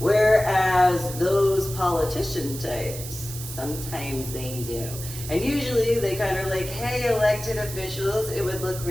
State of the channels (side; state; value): right; noise; hiss, 10 dB below the sound